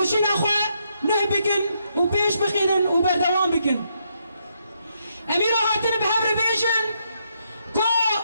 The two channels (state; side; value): inverted; both; correlation -0.77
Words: اخوة نه بكن و بيش بخينن و بردوان بكن اميرو هاتن بهبر بيجن كو